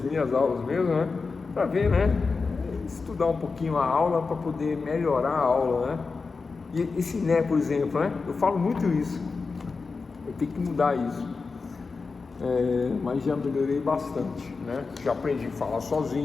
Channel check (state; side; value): quieter; right; 4.5 dB